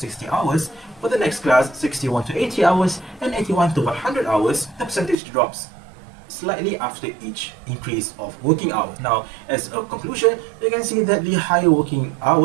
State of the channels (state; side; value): drops out; left; at 5.2 s